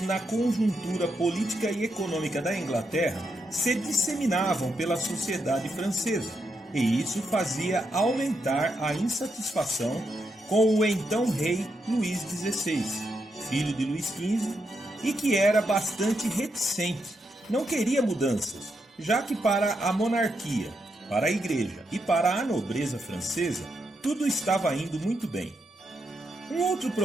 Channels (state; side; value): normal; both; correlation 0.82